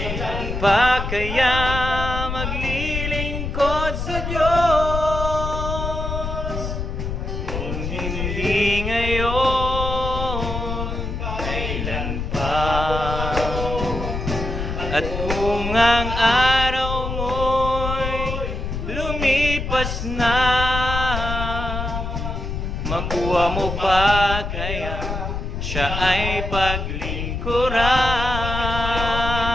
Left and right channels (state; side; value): noise; left; rumble, 4 dB below the sound